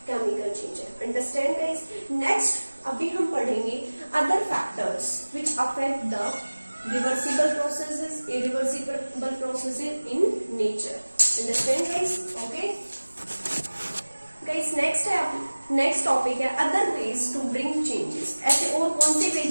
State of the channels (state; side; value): inverted; both; correlation -1.00